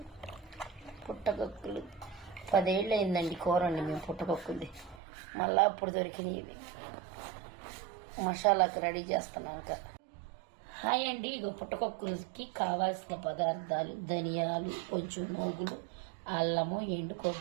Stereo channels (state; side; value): drops out; left; at 5.0 s